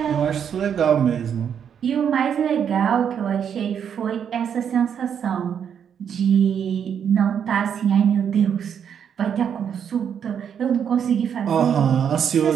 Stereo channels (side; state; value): left; quieter; 8.1 dB